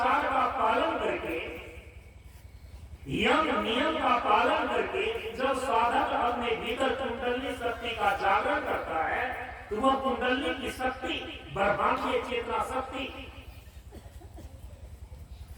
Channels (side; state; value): both; identical; correlation 1.00